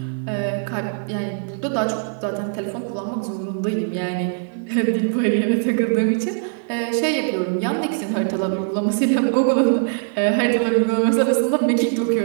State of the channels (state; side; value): silent; left; digital silence